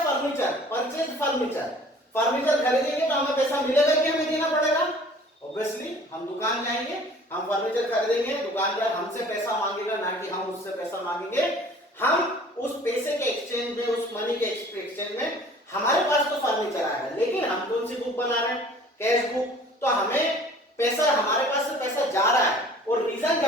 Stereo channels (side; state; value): both; normal; correlation 0.49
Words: फर्नीचर, परचेज फर्नीचर खरीदेंगे तो हमें पैसा मिलेगा कि हमें देना पड़ेगा, ऑब्वियसली हम दुकान जाएंगे, हम फर्नीचर खरीदेंगे, दुकानदार हमसे पैसा मांगेगा, ना कि हम उससे पैसा मांगेंगे। हम उस पैसे के एक्सचेंज में, उस मनी के एक्सचेंज में हमारे पास तो फर्नीचर आएगा, लेकिन हम कौन सी बुक बना रहे हैं, कैश बुक। तो हमें पैसा, हमारे पास से पैसा जा रहा है, और रीजन